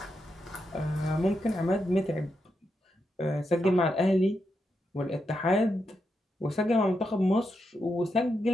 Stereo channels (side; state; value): both; normal; correlation 0.84